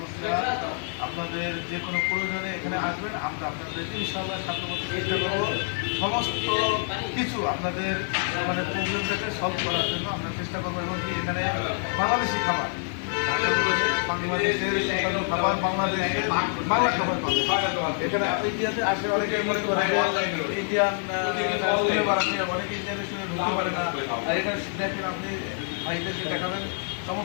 আপনাদের যে কোনো প্রয়োজনে এখানে আসবেন। আমরা আপনাদের ইনশাআল্লাহ সাহায্য করতে চেষ্টা করবো। সমস্ত কিছু আপনাদের মানে প্রবলেমটাকে সলভ করার জন্য আমরা চেষ্টা করবো। এবং কি এখানে বাংলাদেশি খাবার, বাংলাদেশের সুস্বাদু খাবার, বাংলাদেশের বাংলা খাবার পাবে এখানে। ইন্ডিয়াতে আসে অনেকে মনে করে ইন্ডিয়ান অনেকে ইন্ডিয়ান রেস্টুরেন্ট ঢুকতে পারে না। আর এখানে দেখেন আপনি ভাইদেরকে দেখাবেন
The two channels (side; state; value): right; silent; 60 dB below the other